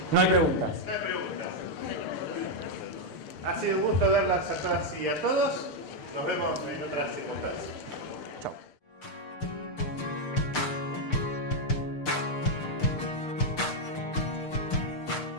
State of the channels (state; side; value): late; right; 6.7 ms